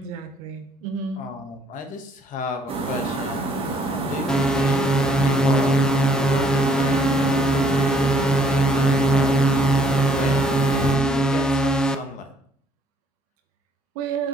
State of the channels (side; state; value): both; normal; correlation 0.63